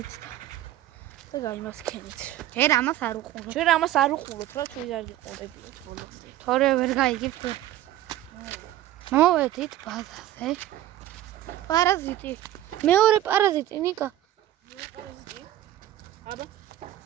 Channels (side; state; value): left; quieter; 13.5 dB